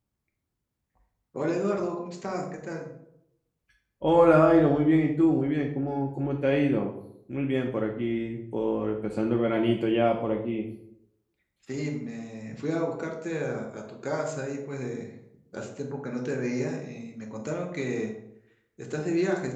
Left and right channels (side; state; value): both; identical; correlation 1.00